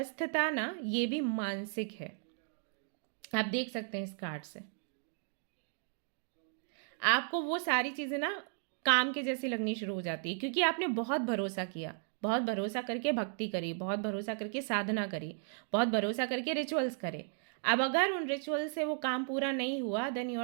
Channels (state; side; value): silent; left; 54 dB below the other